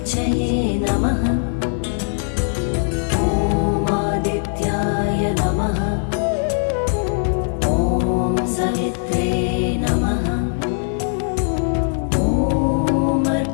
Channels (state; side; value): silent; right; 56 dB below the other